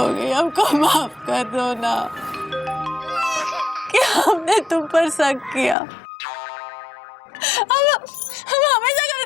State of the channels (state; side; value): drops out; right; at 5.8 s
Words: गई, हमको माफ कर दो ना कि हमने तुम पर शक किया। हम हमेशा